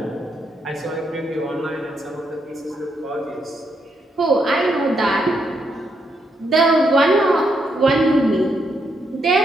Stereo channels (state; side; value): normal; both; correlation 0.78